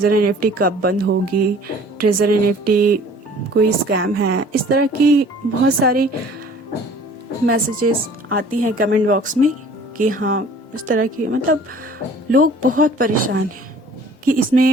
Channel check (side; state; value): both; normal; correlation 0.50